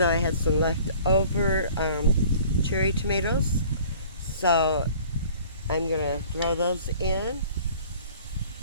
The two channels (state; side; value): inverted; both; correlation -0.49